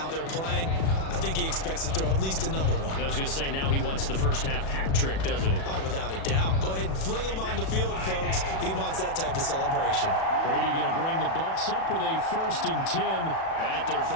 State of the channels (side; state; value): right; late; 37 ms